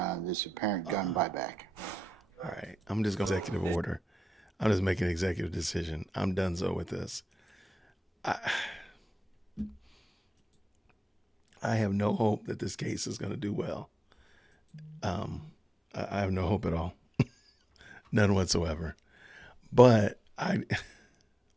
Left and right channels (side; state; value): both; normal; correlation 0.92